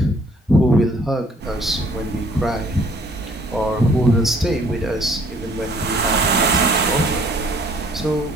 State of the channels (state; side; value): normal; both; correlation 0.59